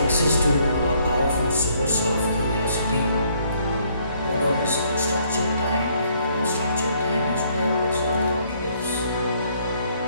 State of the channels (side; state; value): both; inverted; correlation -0.66